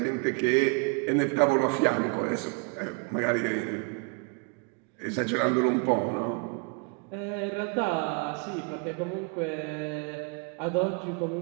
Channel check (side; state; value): left; quieter; 33.9 dB